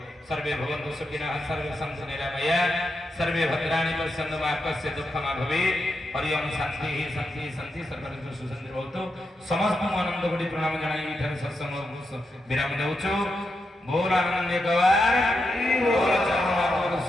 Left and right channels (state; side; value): normal; both; correlation 0.85